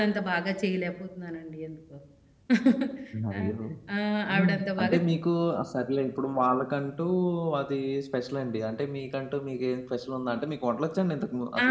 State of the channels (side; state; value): both; identical; correlation 1.00